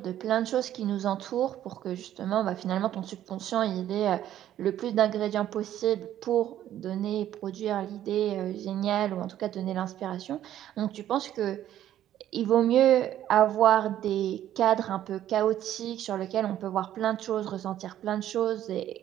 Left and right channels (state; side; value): quieter; left; 11.8 dB